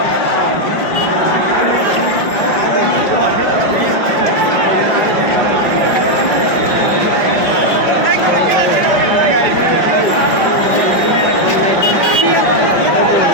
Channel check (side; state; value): right; late; 5.4 ms